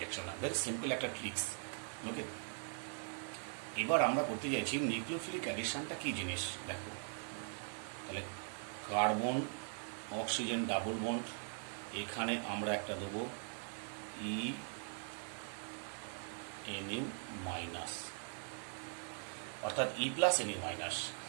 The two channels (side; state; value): left; silent; 50 dB below the other